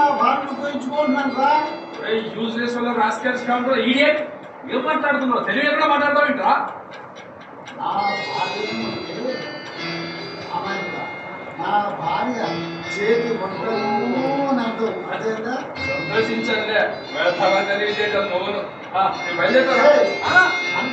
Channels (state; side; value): identical; both; correlation 1.00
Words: భార్యను ఉపయోగించుకుంటున్నాను రా. యూజ్లెస్ వల్ల రాస్కల్స్ కాకుండా ఈడియట్ ఏం మాట్లాడుతున్నావు? తెలివి ఎక్కడ మాట్లాడతావేంట్రా? నా భార్య చేతి వంటలు నాతో అదేనా సంతోషించండి. తెలియజేయడం నువ్వును బయలుదేరా.